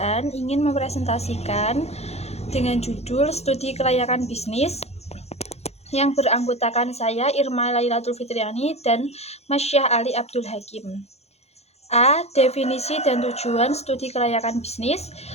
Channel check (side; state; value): right; late; 0.31 ms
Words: ingin mempresentasikan dengan judul Studi Kelayakan Bisnis yang beranggotakan saya Irma Lailatul Fitriani dan Masya Ali Abdul Hakim. A. Definisi dan tujuan studi kelayakan bisnis.